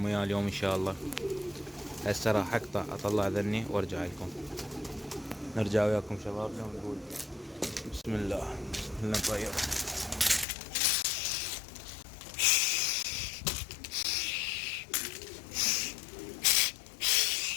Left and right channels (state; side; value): drops out; right; at 10.5 s